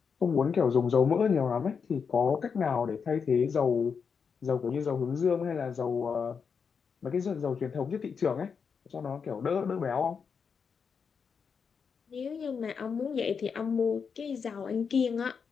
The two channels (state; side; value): quieter; right; 6.1 dB